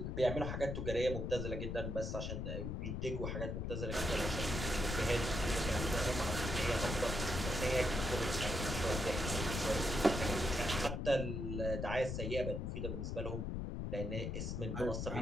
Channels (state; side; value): noise; left; rumble, 2 dB below the sound